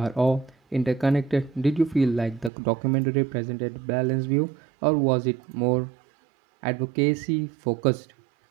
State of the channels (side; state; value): left; drops out; at 2.5 s